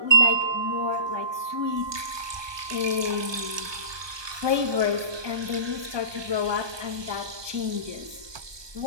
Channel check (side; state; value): left; late; 1.2 ms